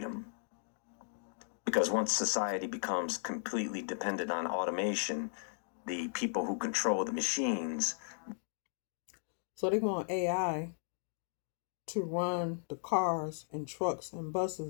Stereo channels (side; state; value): right; silent; digital silence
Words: Because once society becomes completely dependent on automation, the people who control the machines. So they want AI to run the cars and trucks and